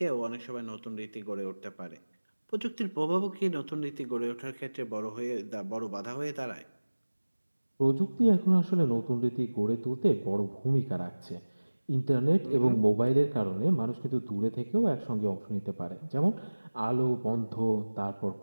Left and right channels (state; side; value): inverted; both; correlation -1.00